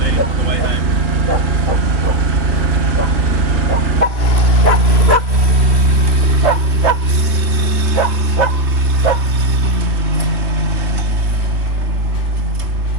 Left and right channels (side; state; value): left; late; 2.9 ms